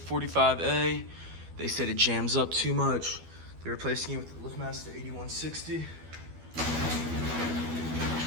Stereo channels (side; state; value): left; late; 12 ms